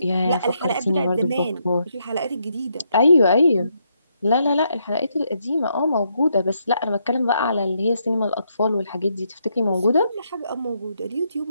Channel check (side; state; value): both; inverted; correlation -0.77